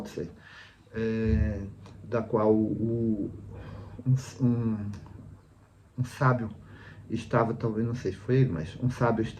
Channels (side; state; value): both; identical; correlation 1.00